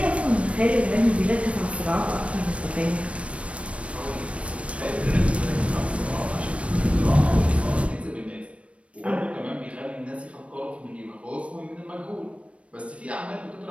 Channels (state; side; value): late; left; 0.062 ms